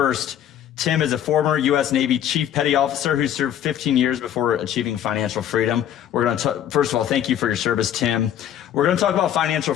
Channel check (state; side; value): quieter; right; 10.5 dB